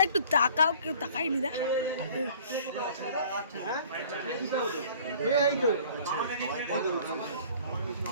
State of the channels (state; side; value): inverted; both; correlation -0.50